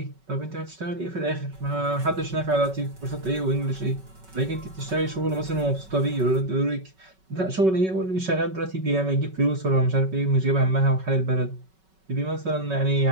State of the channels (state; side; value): late; left; 5.3 ms